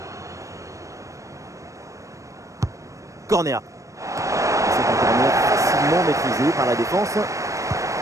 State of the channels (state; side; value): late; left; 0.15 ms